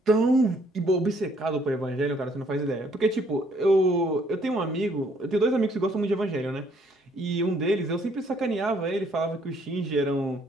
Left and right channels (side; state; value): both; normal; correlation 0.65